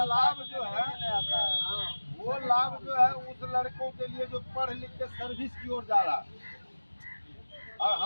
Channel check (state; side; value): inverted; both; correlation -1.00